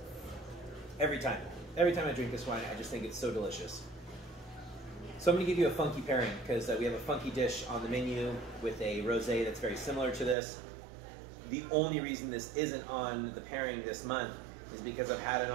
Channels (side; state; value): left; drops out; at 10.4 s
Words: Every time I drink this wine, I just think it's so delicious. So I'm going to give you a funky pairing because we have a funky dish on the menu with a rosé that's very similar to this. The only reason this isn't on the pairing this month is because I've had it